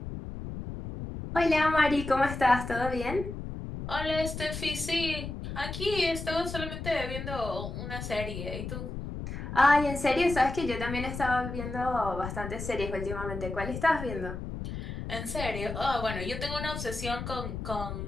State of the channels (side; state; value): left; noise; rumble, 7 dB below the sound